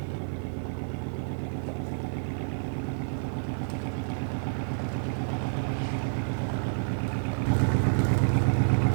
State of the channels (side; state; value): left; silent; 56 dB below the other